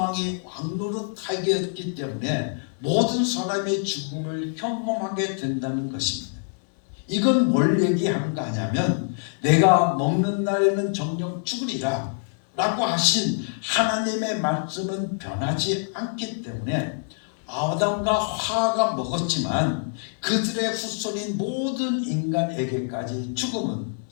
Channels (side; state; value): right; silent; digital silence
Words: 왕노릇하게 했기 때문에 모든 사람의 죽음을 경험하게 된다는 것입니다. 이건 뭘 얘기하는 거 아냐면 내가 먹는 날에는 정녕 죽으리라 라고 하신 하나님의 말씀은 변하지 않기 때문에 아담과 하와가 먹었지만 그들의 후손인 모든 인간에게까지 죽음은